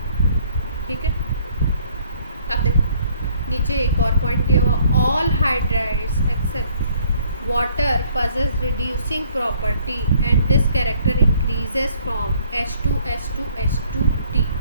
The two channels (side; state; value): both; inverted; correlation -0.62